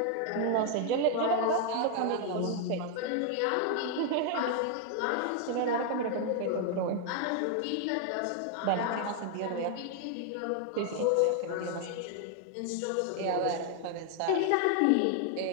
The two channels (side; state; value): both; different; correlation 0.00